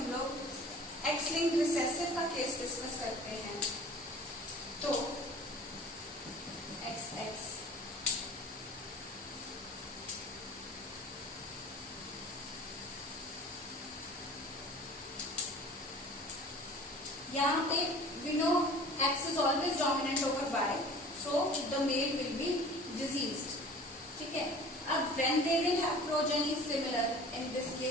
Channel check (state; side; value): normal; both; correlation 0.44